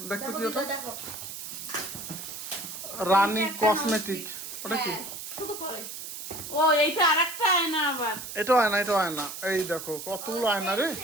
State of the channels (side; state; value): right; noise; hiss, 9 dB below the sound